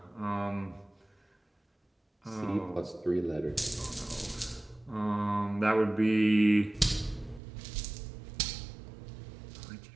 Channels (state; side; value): drops out; left; at 7.4 s